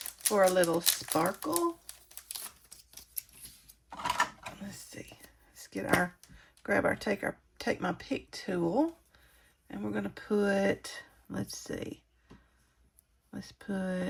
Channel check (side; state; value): both; identical; correlation 1.00